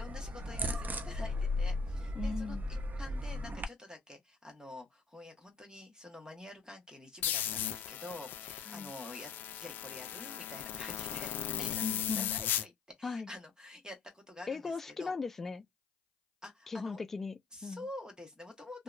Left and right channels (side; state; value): right; quieter; 4.4 dB